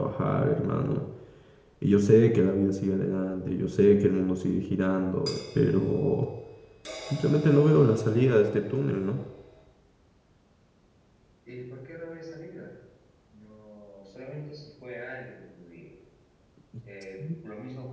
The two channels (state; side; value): identical; both; correlation 1.00